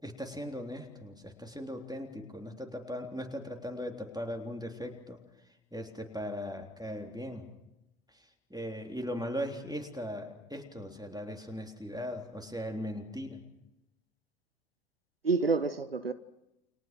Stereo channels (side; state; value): both; normal; correlation 0.54